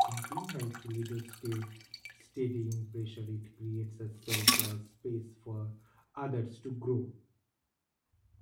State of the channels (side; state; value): both; identical; correlation 1.00